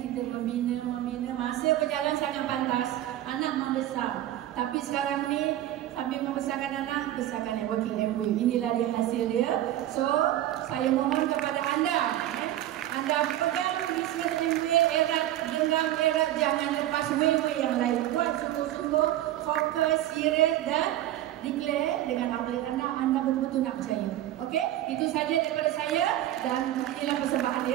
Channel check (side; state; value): left; quieter; 13.4 dB